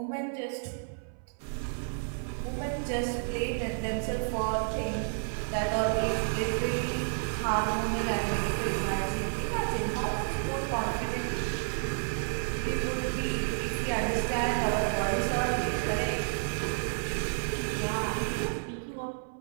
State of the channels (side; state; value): left; silent; 57 dB below the other